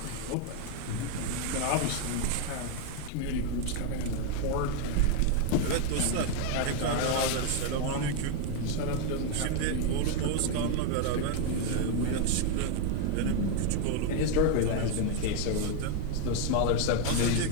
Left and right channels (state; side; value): different; both; correlation 0.01